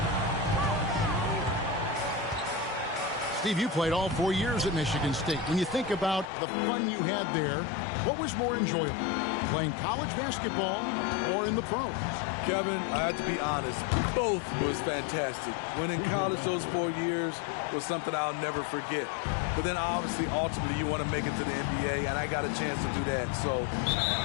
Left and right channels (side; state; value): right; drops out; at 6.3 s